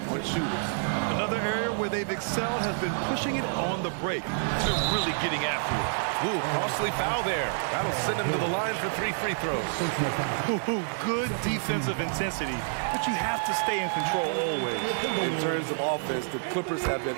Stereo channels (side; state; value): left; silent; 59 dB below the other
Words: on shooters. Another area where they've excelled has been pushing it on the break to really getting after it. Ooh, costly foul there. That'll send him to the line for 3 free throws. Ooh, good defensive intensity, but you have to stay in control always. In terms of offense, the Clippers have been